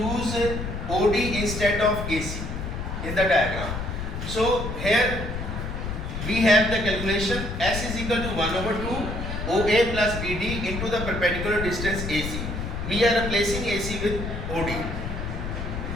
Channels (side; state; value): left; noise; rumble, 5 dB below the sound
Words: OD instead of AC in the diagram. So here we have the calculation. S is equal to 1 over 2 OA plus BD into the perpendicular distance AC. We are replacing AC with OD.